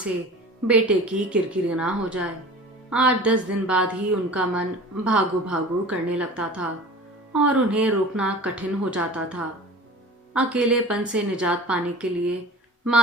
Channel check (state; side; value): normal; both; correlation 0.40